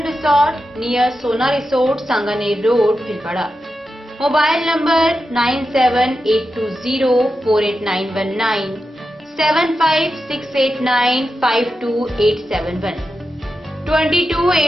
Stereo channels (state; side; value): normal; both; correlation 0.89